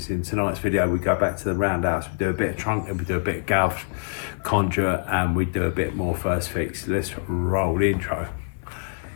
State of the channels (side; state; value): right; silent; 62 dB below the other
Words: In tonight's video we go back to the roundhouse, we do a bit of trunking, we do a bit of Galv, Conduit, and we do a bit more first fix. Let's roll the intro.